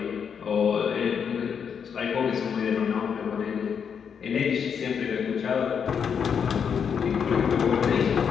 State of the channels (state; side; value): quieter; right; 7.1 dB